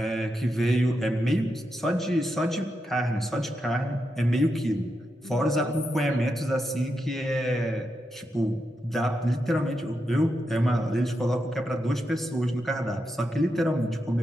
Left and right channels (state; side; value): normal; both; correlation 0.86